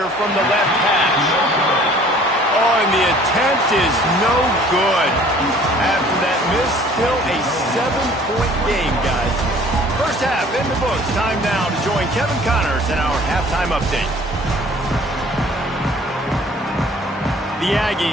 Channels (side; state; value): both; normal; correlation 0.52